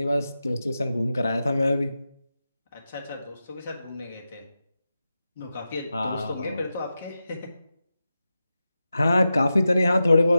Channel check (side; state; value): both; inverted; correlation -0.92